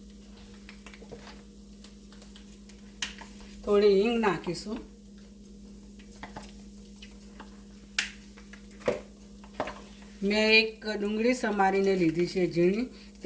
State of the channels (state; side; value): identical; both; correlation 1.00